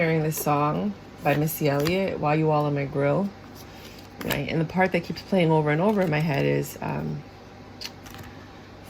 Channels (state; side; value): identical; both; correlation 1.00